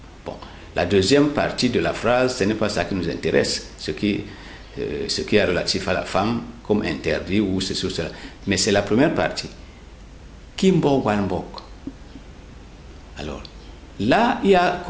Bon, la deuxième partie de la phrase, ce n'est pas ça qui nous intéresse, ce qui est relatif à la femme, comme interdit ou ceci ou cela. Mais c'est la première partie. Kimbok Walmbok. Alors, là, il y a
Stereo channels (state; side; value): identical; both; correlation 1.00